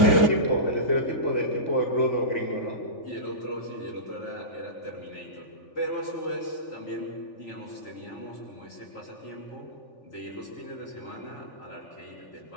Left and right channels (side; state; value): right; late; 3.4 ms